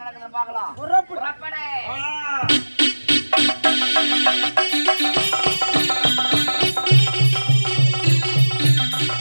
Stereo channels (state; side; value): inverted; both; correlation -1.00